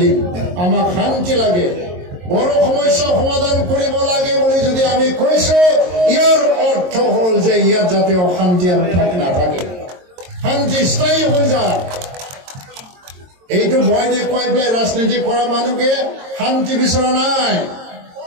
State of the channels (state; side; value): late; left; 22 ms